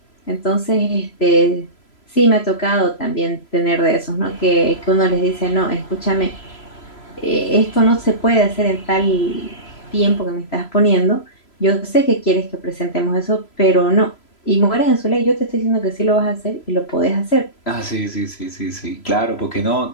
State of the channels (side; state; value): right; late; 3.0 ms